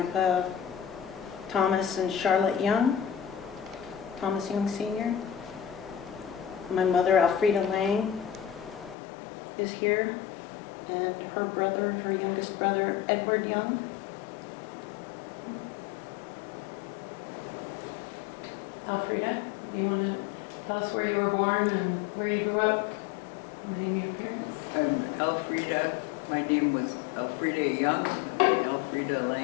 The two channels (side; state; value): right; drops out; at 9.0 s